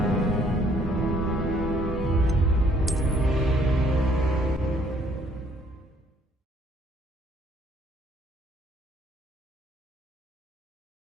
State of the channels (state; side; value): normal; both; correlation 0.64